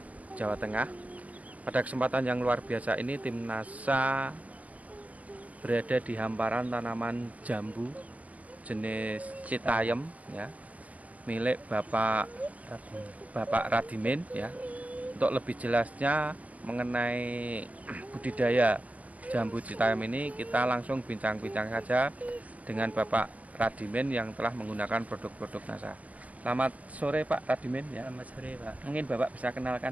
Jawa Tengah. Pada kesempatan yang luar biasa ini tim NASA berada di hamparan tanaman jambu jenis Citayam ya, milik Bapak Radimin ya. Untuk lebih jelasnya mengenai budidaya jambu Citayam ini, kita langsung bincang-bincang saja dengan Bapak Radimin yang telah menggunakan produk-produk NASA. Selamat sore Pak Radimin ya. Selamat sore Pak. Mungkin Bapak bisa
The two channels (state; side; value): late; left; 0.070 ms